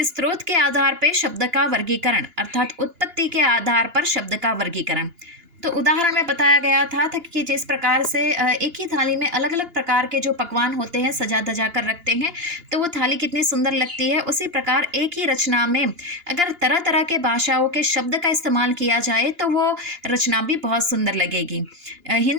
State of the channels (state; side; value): late; left; 2.9 ms